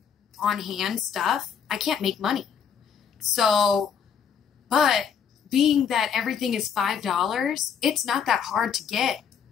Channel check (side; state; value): right; quieter; 7.3 dB